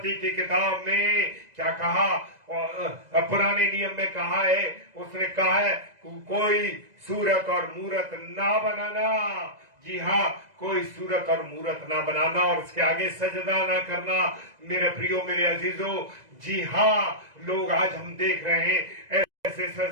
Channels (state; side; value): late; left; 2.0 ms